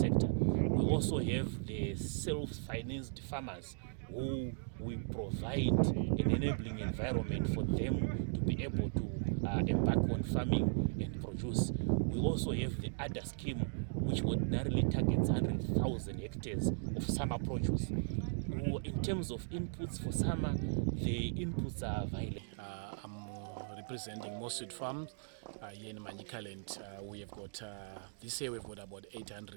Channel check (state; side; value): silent; left; digital silence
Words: We also have the self-financed farmers who we provide an enabling environment for them to be able to embark on farming and produce. We also have the ADA scheme, which ordinarily targets 100,000 hectares of summer produce. In terms of inputs for summer, the inputs are available. I'm representing Mostly Farms here in Manicaland. We have got this year we've got about